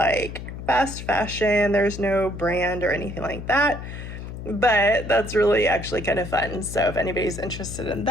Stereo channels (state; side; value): noise; left; hum, 9 dB below the sound